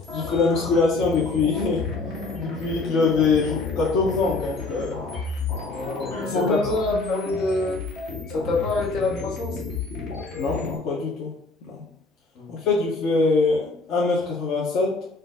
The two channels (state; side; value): quieter; right; 3.5 dB